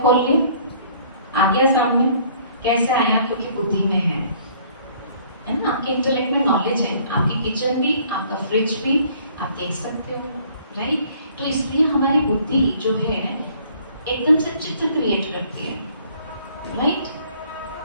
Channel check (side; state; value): both; inverted; correlation -0.58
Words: खोल लिया, आ गया सामने, कैसे आया? क्योंकि बुद्धि में है ना? आपके इंटेलेक्ट में नॉलेज है, आपकी किचन भी, आपका फ्रिज भी आप देख सकते हो, राइट? तो इसलिए हमारी बुद्धि जो है एकदम से चित्र क्रिएट करती है, राइट?